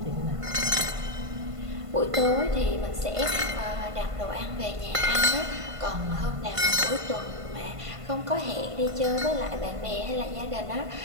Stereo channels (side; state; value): left; late; 1.5 ms